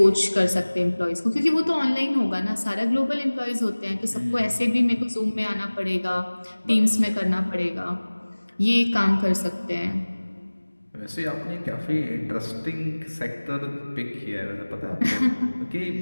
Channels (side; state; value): both; inverted; correlation -1.00